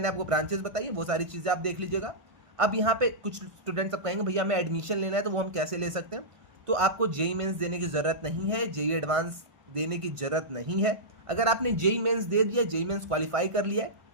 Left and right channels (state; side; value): late; left; 1.5 ms